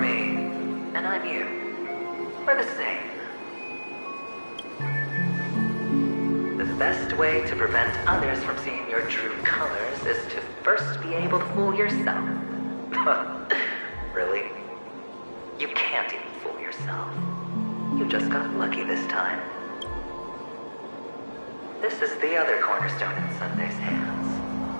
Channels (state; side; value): inverted; both; correlation -1.00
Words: and I'm you. We're the same. The best way to prevent others from seeing your true colors is to first be able to fool yourself. Really? You can't even fool yourself. You just got lucky this time. This is the other cornerstone in Sunday's hands.